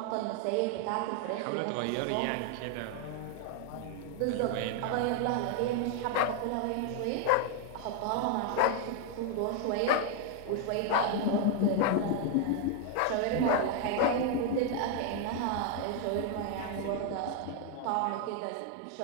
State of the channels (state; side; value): different; both; correlation 0.00